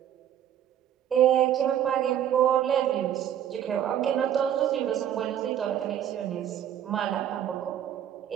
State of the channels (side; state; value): left; quieter; 10.2 dB